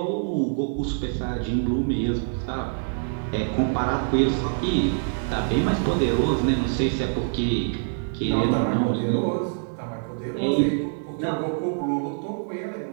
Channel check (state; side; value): silent; left; 59 dB below the other